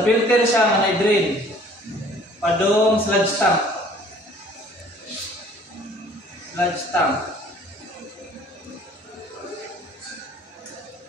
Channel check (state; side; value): normal; both; correlation 0.54